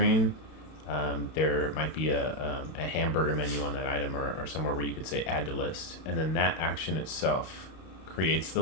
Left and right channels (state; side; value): late; right; 32 ms